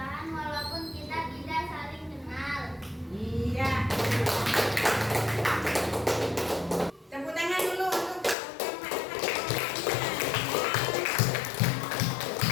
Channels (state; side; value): drops out; right; at 8.3 s